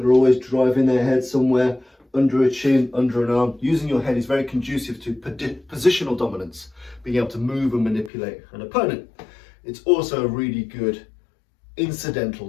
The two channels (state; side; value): drops out; right; at 8.1 s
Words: are always driving their head somewhere, under a chin, under an arm. Using your head is very conducive to positional dominance, being able to move and manipulate an opponent. It's also a really good